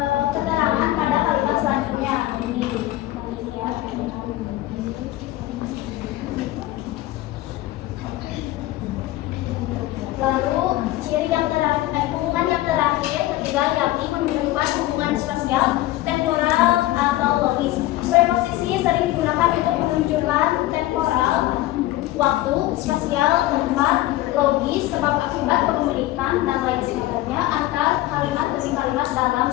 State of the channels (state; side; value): quieter; right; 16.0 dB